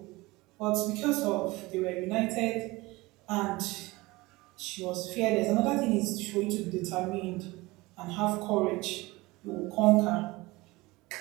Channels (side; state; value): left; quieter; 21.6 dB